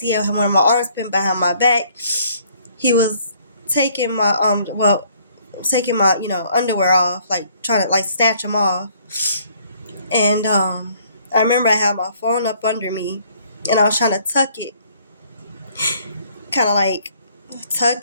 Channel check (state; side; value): inverted; both; correlation -0.62